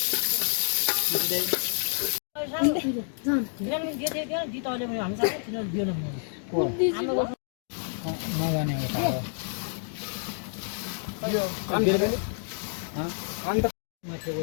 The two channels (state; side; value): silent; right; 59 dB below the other